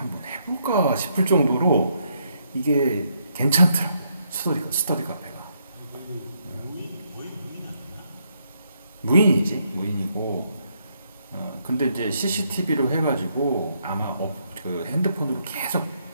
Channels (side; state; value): both; inverted; correlation -0.75